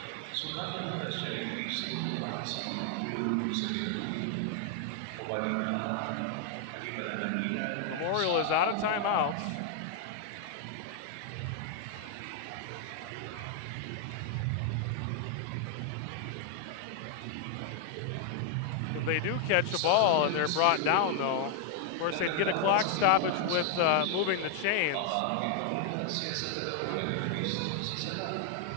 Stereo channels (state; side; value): different; both; correlation 0.00